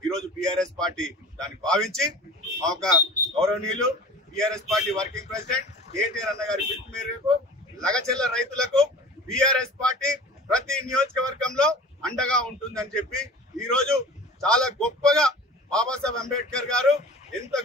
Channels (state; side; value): normal; both; correlation 0.40